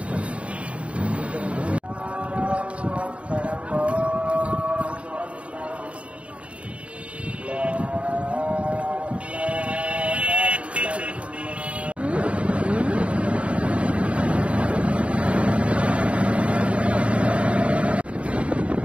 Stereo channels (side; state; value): left; late; 0.062 ms